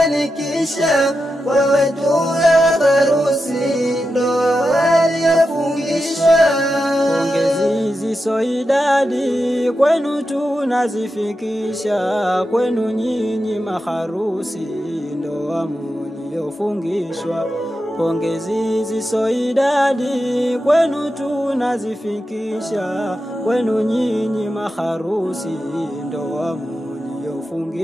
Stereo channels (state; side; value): normal; both; correlation 0.89